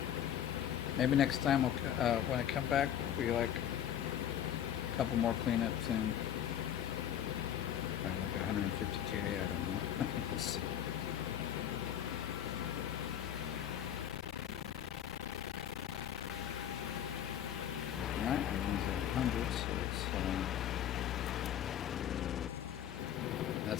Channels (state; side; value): quieter; right; 10.2 dB